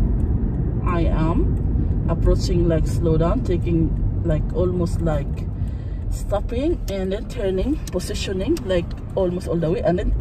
I am approaching like slow down, taking like almost like stopping and then turning, positioning like almost all the way, and then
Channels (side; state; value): both; identical; correlation 1.00